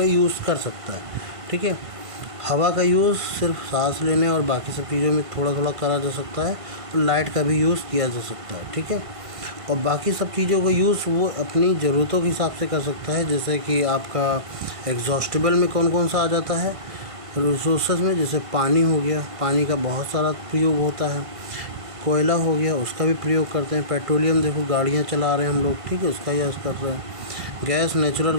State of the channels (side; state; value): left; late; 1.5 ms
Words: यूज़ कर सकता है, ठीक है। हवा का यूज़ सिर्फ सांस लेने और बाकी सब चीज़ों में थोड़ा थोड़ा करा जा सकता है, और लाइट का भी यूज़ किया जा सकता है, ठीक है। और बाकी सब चीज़ों का यूज़ वो अपनी ज़रूरतों के हिसाब से कर सकता है। जैसे कि आपका एग्जॉस्टेबल में कौन कौन सा आ जाता है रिसोर्सेज में, जैसे पानी हो गया, पानी का बहुत सारा प्रयोग होता है। कोयला हो गया, उसका भी प्रयोग करते हैं। पेट्रोलियम देखो गाड़ियाँ चला रहे हैं हम लोग, ठीक है, उसका यूज़ कर रहे हैं। गैस, नेचुरल